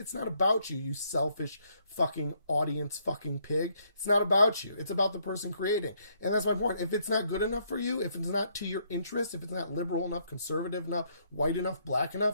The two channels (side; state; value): both; inverted; correlation -0.71